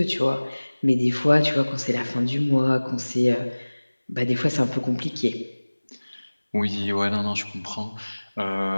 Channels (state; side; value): inverted; both; correlation -1.00